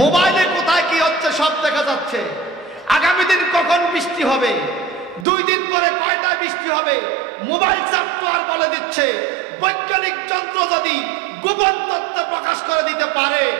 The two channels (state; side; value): drops out; left; at 5.2 s